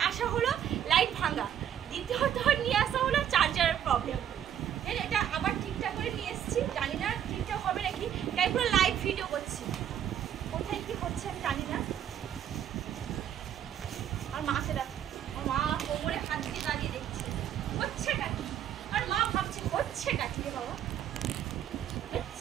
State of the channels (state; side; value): quieter; left; 9.9 dB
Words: আসা হলো লাইট ভাঙা, দ্বিতীয়ত নিয়ে আসা হলো চার্জারের প্রবলেম। এটা আবার ঠিকঠাক করে নিয়ে এসেছি, জানি না ঠিকঠাক হবে নাকি, তাই পুরো লাইভ ভিডিও করছি। কোথায় কি হচ্ছে আমি জানি না। আর মাকে দেখ, আমার মা কোমরে হাত দিয়ে দাঁড়িয়ে দেখছে হচ্ছেটা কি। আর মা ভাবছে হচ্ছেটা কি রে বাবা,